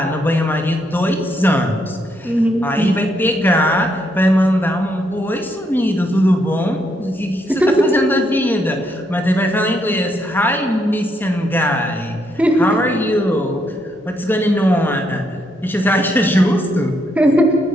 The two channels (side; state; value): both; normal; correlation 0.76